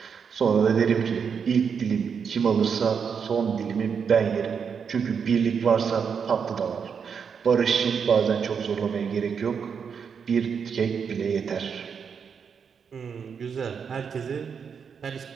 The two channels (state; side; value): quieter; left; 6.6 dB